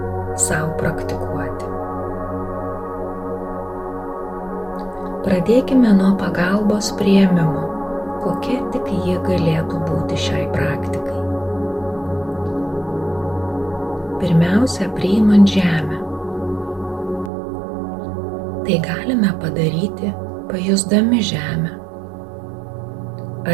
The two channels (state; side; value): drops out; left; at 17.3 s